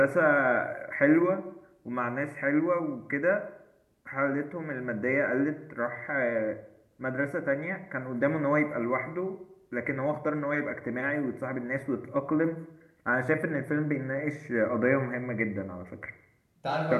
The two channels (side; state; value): both; identical; correlation 1.00